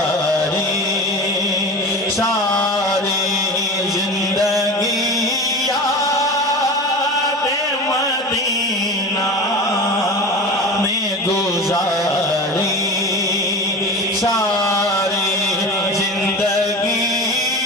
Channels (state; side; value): normal; both; correlation 0.31